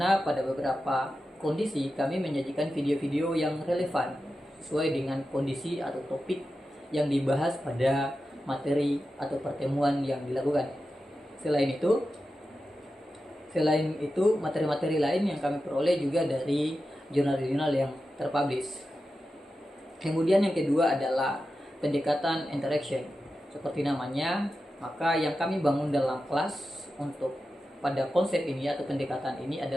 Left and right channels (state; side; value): normal; both; correlation 0.91